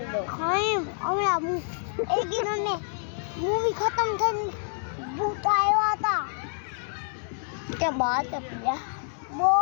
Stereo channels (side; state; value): right; silent; 60 dB below the other